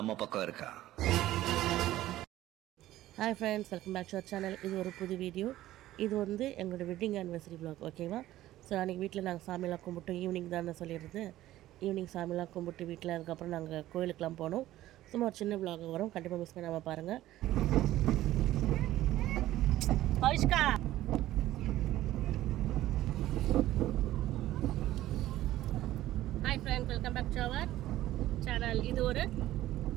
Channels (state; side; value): quieter; left; 14.7 dB